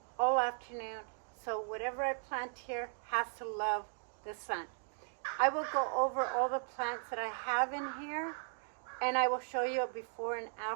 all afternoon, so whatever I plant here has to love the sun. I will go over all the plants that I have in here, and I will show you a before and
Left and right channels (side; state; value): left; silent; 53 dB below the other